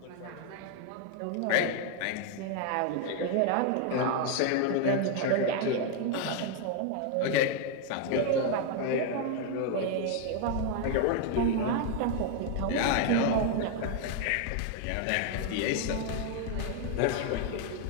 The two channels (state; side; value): different; both; correlation 0.00